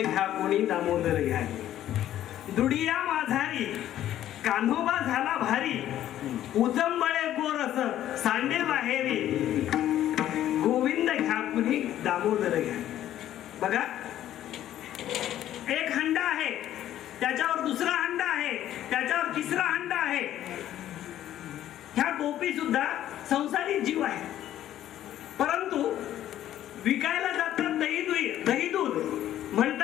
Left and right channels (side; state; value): right; quieter; 12.2 dB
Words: कोणी दामोदर घ्या गे. दुडिया माझारी कान्होबा झाला भारी. उजंबळे गोरस सांडे बाहेरी. गोविंद घ्या कोणी दामोदर घ्या. बघा एक हंडा आहे त्याच्यावर दुसरा हंडा आहे त्याच्यावर तिसरा हंडा आहे. ह्या गोपी सुद्धा संसारी जीव आहे. परंतु विकायला जातात दही दूध